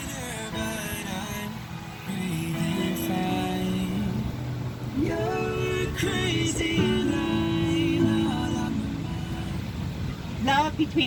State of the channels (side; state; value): both; identical; correlation 1.00